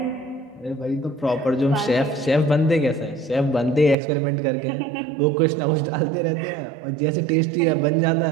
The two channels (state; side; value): drops out; left; at 4.0 s